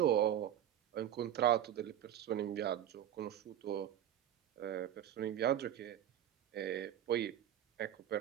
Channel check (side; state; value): left; quieter; 11.0 dB